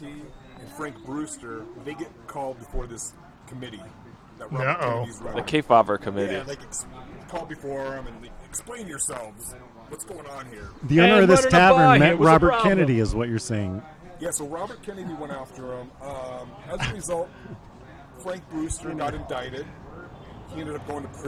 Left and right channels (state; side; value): identical; both; correlation 1.00